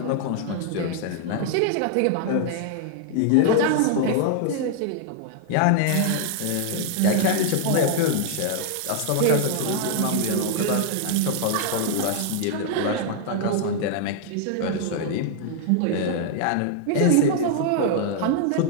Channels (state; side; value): different; both; correlation 0.00